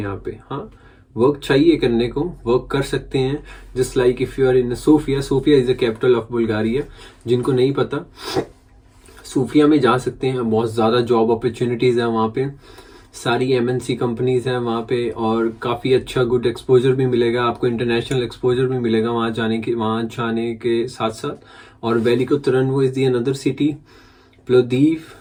पे। हाँ, वर्क चाहिए करने को, वर्क कर सकते हैं। Just like if you are in Sofia, Sofia is the capital of Bulgaria. जिनको नहीं पता, सोफिया में जा सकते हैं, बहुत ज़्यादा जॉब अपॉर्चुनिटीज़ है वहाँ पे, सारी एमएनसी कंपनीज हैं वहाँ पे, और काफ़ी अच्छा गुड एक्सपोजर भी मिलेगा आपको, इंटरनेशनल एक्सपोजर भी मिलेगा वहाँ जाने के साथ साथ। और Veliko Tarnovo is the another city, Plovdiv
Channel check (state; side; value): identical; both; correlation 1.00